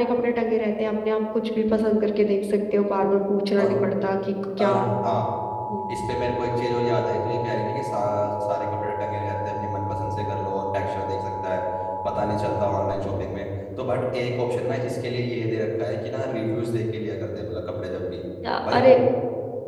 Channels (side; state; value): both; identical; correlation 1.00